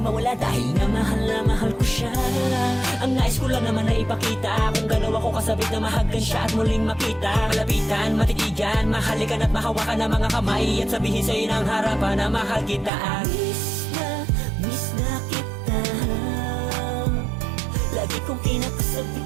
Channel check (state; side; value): drops out; left; at 12.9 s